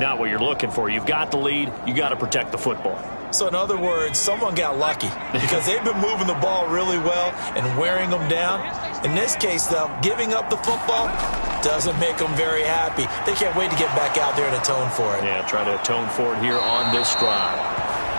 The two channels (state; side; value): inverted; both; correlation -1.00